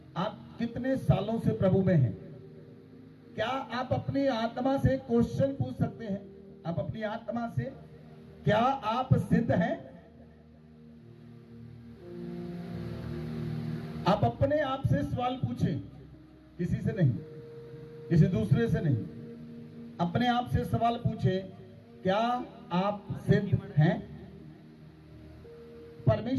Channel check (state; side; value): identical; both; correlation 1.00